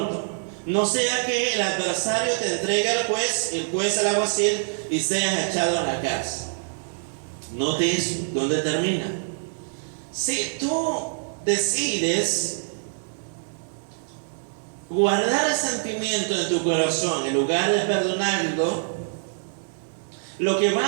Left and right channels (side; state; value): left; silent; 62 dB below the other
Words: No sea que el adversario te entregue al juez, el juez al alguacil y seas echado a la cárcel. Note eso, ¿dónde termina? Si tú decides guardar el sentimiento en tu corazón en lugar de perdonarlo, lo que